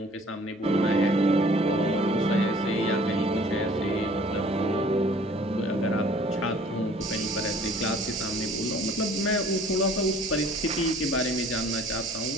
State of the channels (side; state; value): both; normal; correlation 0.52